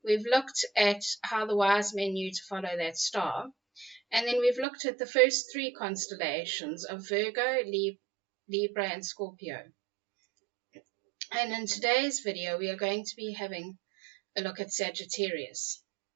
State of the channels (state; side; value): drops out; left; at 4.7 s